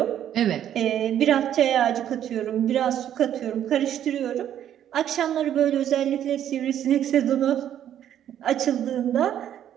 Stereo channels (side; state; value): left; quieter; 10.5 dB